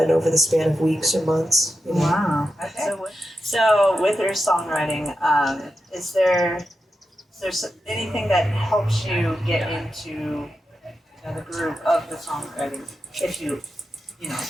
over the span of weeks or months. You know? Wow. Okay. So with your songwriting, is there anything that helps you get into the groove of the songwriting? If you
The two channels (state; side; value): normal; both; correlation 0.89